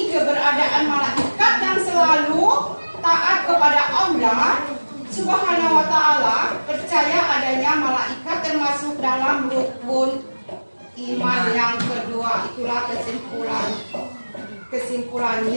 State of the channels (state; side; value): inverted; both; correlation -1.00